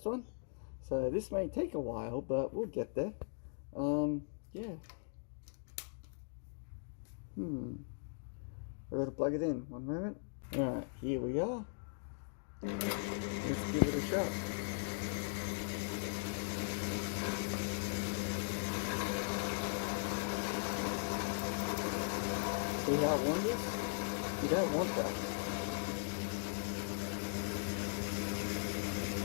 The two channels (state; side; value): silent; right; digital silence